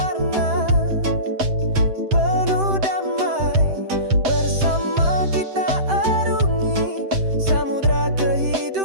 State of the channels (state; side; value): late; left; 7.7 ms